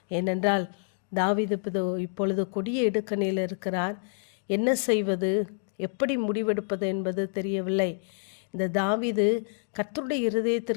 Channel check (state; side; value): silent; right; digital silence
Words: ஏனென்றால் தாவீது இப்பொழுது கொடிய இடுக்கணில் இருக்கிறார். என்ன செய்வது, எப்படி முடிவெடுப்பது என்பது தெரியவில்லை. இந்த தாவீது கர்த்தருடைய